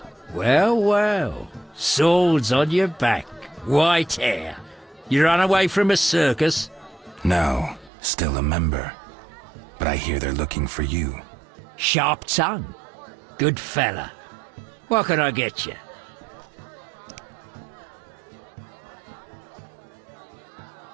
Well, well. Swords on your back. White hair. You run away from a circus? No, still a member. But I hear they're looking for you. Sharp tongue. Good fella. What can I get you?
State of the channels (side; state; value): left; drops out; at 7.9 s